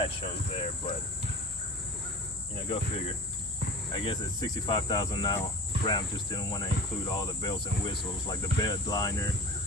shows there, but you know, go figure. I guess at 65,000 now, Ram just didn't want to include all the bells and whistles, like the bed liner,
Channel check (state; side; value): normal; both; correlation 0.38